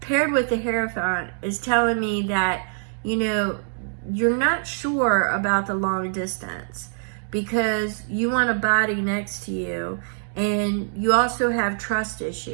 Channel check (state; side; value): silent; left; digital silence